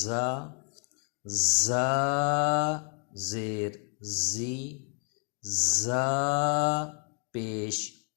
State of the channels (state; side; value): quieter; right; 39.0 dB